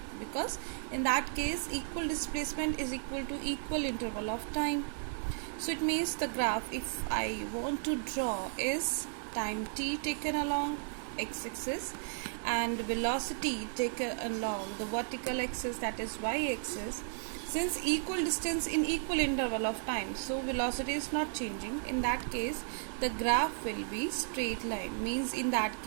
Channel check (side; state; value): left; silent; digital silence